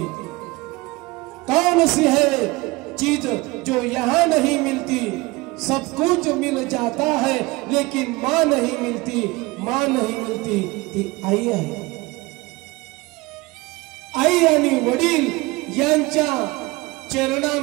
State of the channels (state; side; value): quieter; left; 22.9 dB